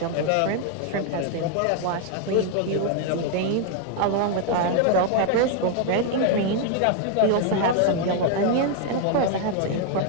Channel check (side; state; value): both; different; correlation 0.00